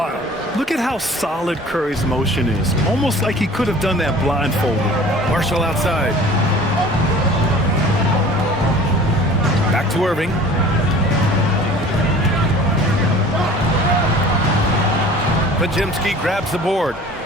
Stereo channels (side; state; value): both; normal; correlation 0.46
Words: Look at how solid Curry's motion is. Almost like he could have done that blindfolded. Marshall outside. Back to Irving. Pajemski grabs the board.